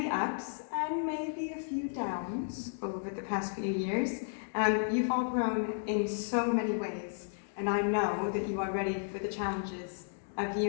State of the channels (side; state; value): right; silent; digital silence